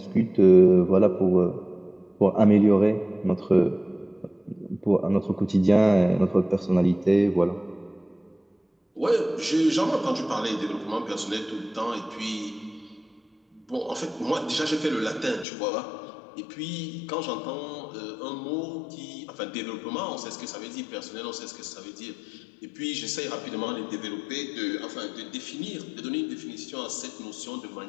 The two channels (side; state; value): right; drops out; at 15.5 s